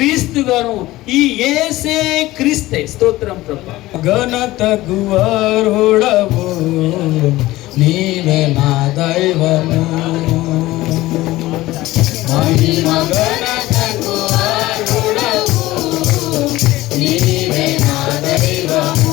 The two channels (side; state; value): right; quieter; 17.7 dB